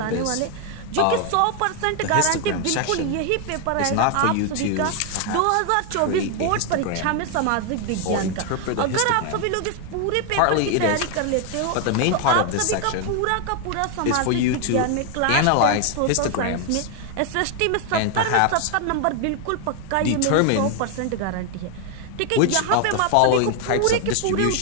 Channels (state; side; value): different; both; correlation 0.00